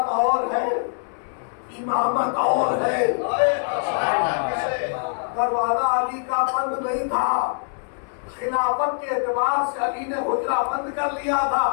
اور ہے، امامت اور ہے. دروازہ علی کا بند نہیں تھا، خلافت کے اعتبار سے علی نے حجرہ بند کر لیا تھا،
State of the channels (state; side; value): silent; right; 63 dB below the other